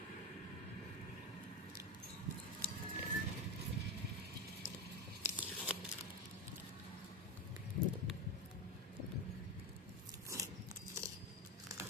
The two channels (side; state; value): both; normal; correlation 0.16